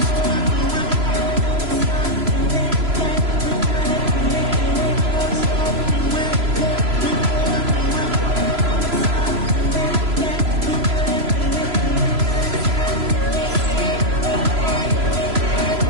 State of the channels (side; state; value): left; late; 3.0 ms